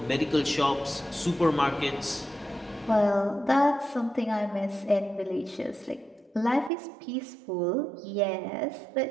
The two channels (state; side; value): drops out; left; at 6.7 s